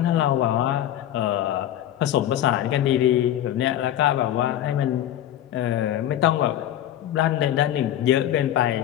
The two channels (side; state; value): right; quieter; 11.9 dB